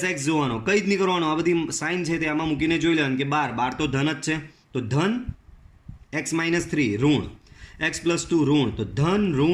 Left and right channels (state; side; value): identical; both; correlation 1.00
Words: જોવાનો, કંઈ જ નહીં કરવાનું, આ બધી સાઇન છે તે આમાં મૂકીને જોઈ લેવાનું કે 12 તો ધન જ છે, તો ધન x-3 ઋણ, x+2 ઋણ, તો ધન